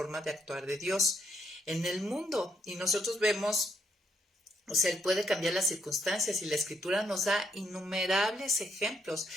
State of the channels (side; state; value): both; normal; correlation 0.75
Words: de actuar de Dios en el mundo. Y nosotros vemos O sea, Él puede cambiar las circunstancias y la Escritura nos da innumerables ejemplos.